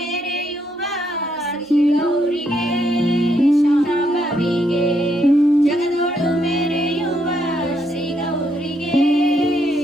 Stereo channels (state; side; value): normal; both; correlation 0.75